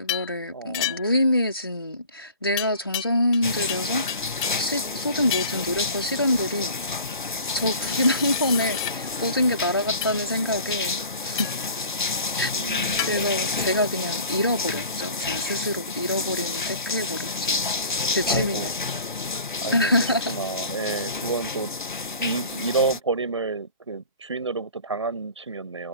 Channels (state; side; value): inverted; both; correlation -0.43